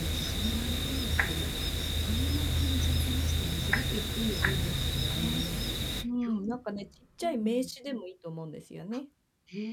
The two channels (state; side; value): identical; both; correlation 1.00